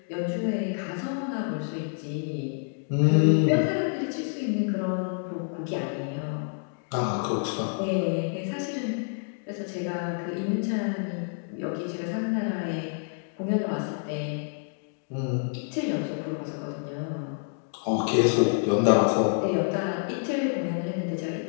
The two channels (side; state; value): right; silent; 59 dB below the other